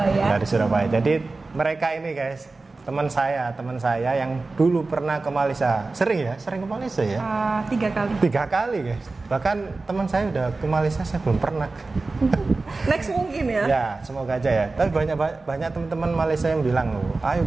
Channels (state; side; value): quieter; left; 3.6 dB